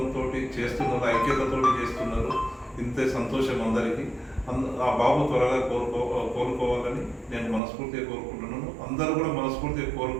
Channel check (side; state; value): left; drops out; at 7.6 s